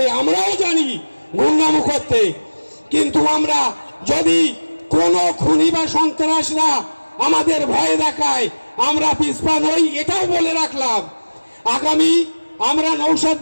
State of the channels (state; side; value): inverted; both; correlation -1.00